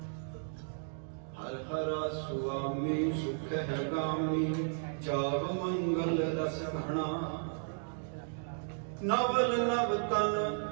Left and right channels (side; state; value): left; silent; digital silence